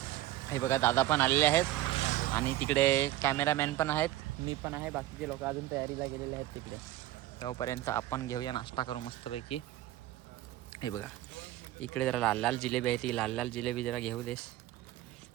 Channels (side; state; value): left; quieter; 14.9 dB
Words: हे बघा, दादा पण आलेले आहेत आणि तिकडे कॅमेरामॅन पण आहेत, मी पण आहे, बाकीचे लोक अजून तयारीला गेलेले आहेत तिकडे. तोपर्यंत आपण घेऊया नाश्ता करू मस्तपैकी. हे बघा, इकडे जरा लाल लाल जिलेबी आहे, ती लाल लाल जिलेबी जरा घेऊ देस.